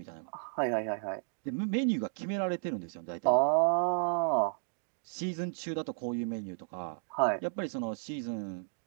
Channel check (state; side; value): silent; left; digital silence